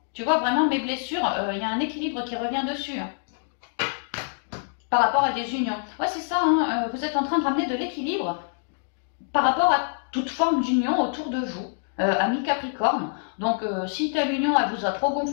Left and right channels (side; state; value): right; silent; digital silence